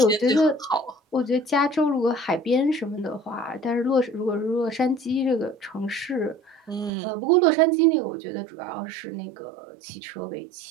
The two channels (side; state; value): left; drops out; at 6.9 s